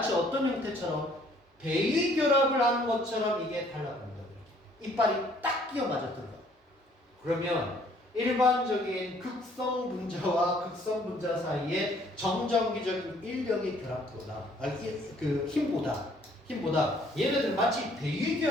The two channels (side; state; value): both; normal; correlation 0.61